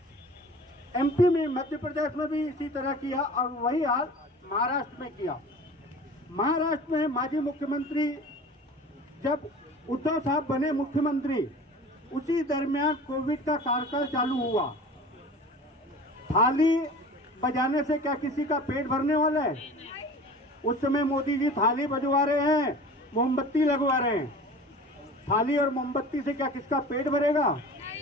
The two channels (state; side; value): normal; both; correlation 0.40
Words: एमपी में, मध्य प्रदेश में भी इसी तरह किया और वही हाल महाराष्ट्र में किया। महाराष्ट्र में माजी मुख्यमंत्री जब उद्धव साहब बने मुख्यमंत्री उसी दरमियान कोविड का कार्यकाल चालू हुआ। थाली बजाने से क्या किसी का पेट भरने वाला है? उस समय मोदी जी थाली बजवा रहे हैं, मोमबत्ती लगवा रहे हैं। थाली और मोमबत्ती से क्या किसका पेट भरेगा?